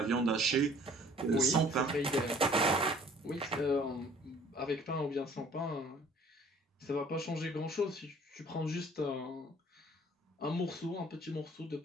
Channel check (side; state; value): both; normal; correlation 0.54